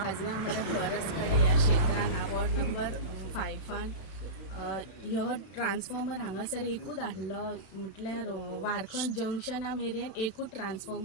आमच्या फॉरेस्ट कडेन ह्या क्षेत्रान वॉर्ड नंबर 5 ह्यो ट्रान्सफॉर्मर हांगासर एकूच आसलो म्हटल्यार वारखंड जंक्शना मेरेन एकूच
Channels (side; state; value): right; late; 31 ms